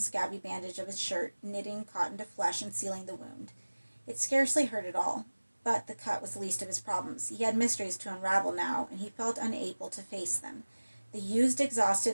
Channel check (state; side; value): inverted; both; correlation -1.00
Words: bandage of his shirt, knitting cotton to flesh and sealing the wound. It scarcely hurt at all, but the cut was the least of his problems. He had mysteries to unravel now, and he felt unable to face them. The used,